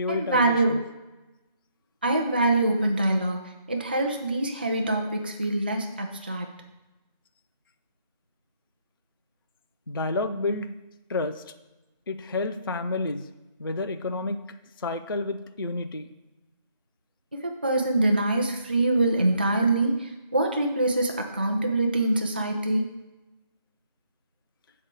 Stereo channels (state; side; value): inverted; both; correlation -0.71